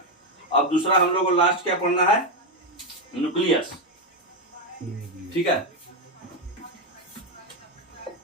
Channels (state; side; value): normal; both; correlation 0.07